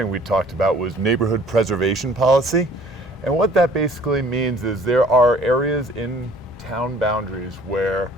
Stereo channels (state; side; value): normal; both; correlation 0.53